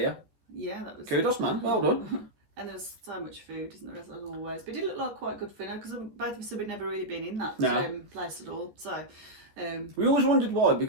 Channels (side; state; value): left; late; 13 ms